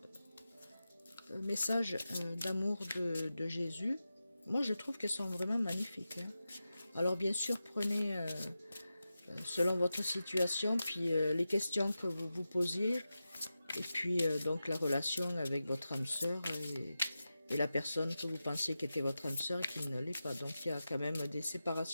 un message d'amour de Jésus. Moi, je trouve qu'elles sont vraiment magnifiques. Hein. Alors, bien sûr, prenez selon votre situation, puis les questions que vous vous posiez, et puis donc la relation avec votre âme sœur et la personne que vous pensiez qui était votre âme sœur et qui ne l'est pas. Donc, il y a quand même des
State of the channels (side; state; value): both; inverted; correlation -0.92